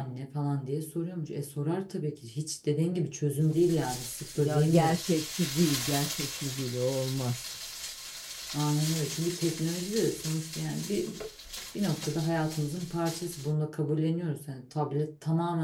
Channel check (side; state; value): both; identical; correlation 1.00